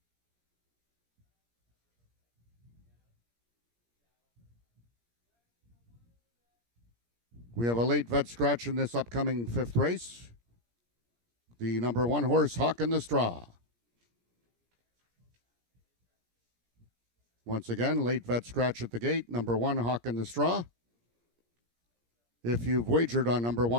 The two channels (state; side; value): late; left; 17 ms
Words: We have a late vet scratch in this upcoming 5th race. The number 1 horse, Hawk in the Straw. Once again, late vet scratch at the gate, number 1, Hawk in the Straw. If you've wagered on number